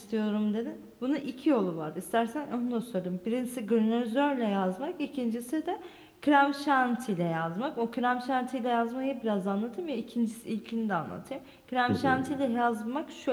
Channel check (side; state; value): both; identical; correlation 1.00